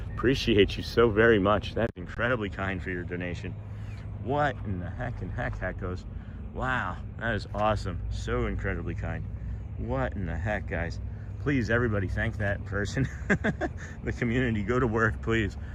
Appreciate you so very much. That's incredibly kind for your donation. What in the heck goes? Wow, that is awesome. So incredibly kind. What in the heck, guys? Please, everybody, thank that person. The community, go to work, please.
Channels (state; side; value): identical; both; correlation 1.00